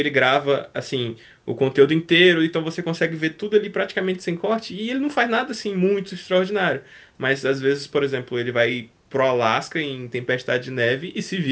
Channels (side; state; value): both; identical; correlation 1.00